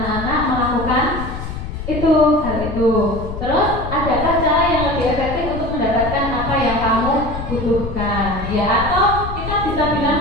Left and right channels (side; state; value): left; noise; rumble, 7 dB below the sound